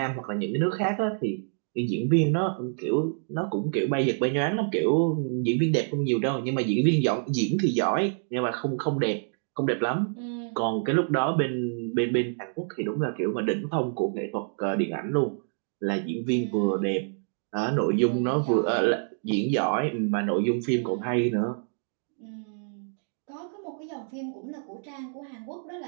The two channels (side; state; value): left; silent; digital silence